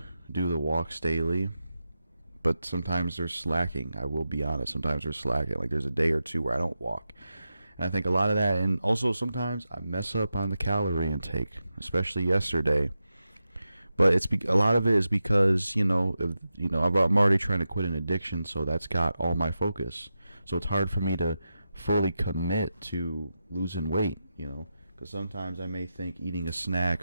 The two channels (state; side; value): inverted; both; correlation -0.90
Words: do the walks daily, but sometimes they're slacking. I will be honest. Sometimes they're slacking. Like, there's a day or two where I don't walk. And I think a lot of that, and also sometimes I mess up on the calorie intake, especially yesterday. But a lot of it is because, I'm already trying to quit an addiction, so that's got all my focus. So it's hard for me to fully commit to losing weight, because sometimes I may think eating a